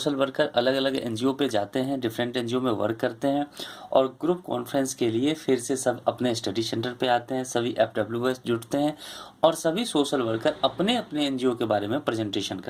वर्कर अलग अलग NGO पे जाते हैं, डिफरेंट NGO में वर्क करते हैं, और ग्रुप कॉन्फ्रेंस के लिए फिर से सब अपने स्टडी सेंटर पे आते हैं, सभी FWS जुटते हैं और सभी सोशल वर्कर अपने अपने NGO के बारे में प्रेजेंटेशन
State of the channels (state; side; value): identical; both; correlation 1.00